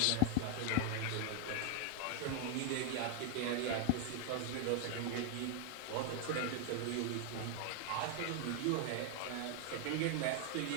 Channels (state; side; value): different; both; correlation 0.00